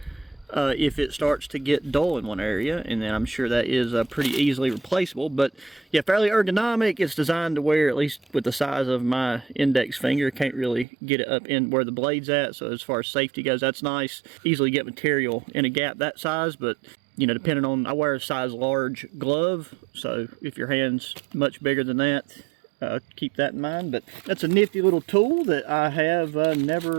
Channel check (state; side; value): drops out; left; at 10.9 s